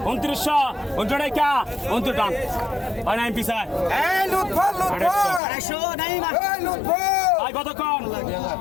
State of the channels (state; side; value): drops out; right; at 5.4 s